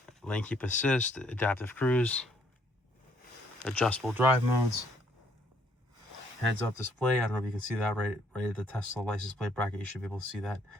lane keep assist, adaptive cruise, adjustable drive modes, heads up display. I don't know if you can see that right at the Tesla license plate bracket. You should be able to see that.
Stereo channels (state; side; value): normal; both; correlation 0.67